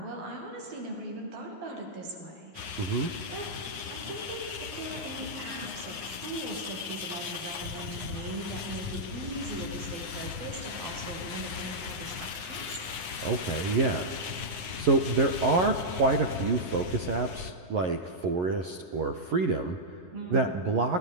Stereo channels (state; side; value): late; left; 9.7 ms